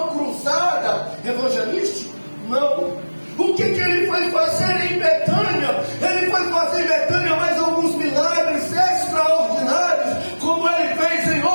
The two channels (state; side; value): inverted; both; correlation -1.00